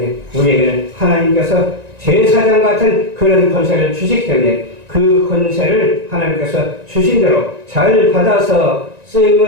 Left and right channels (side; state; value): left; late; 1.9 ms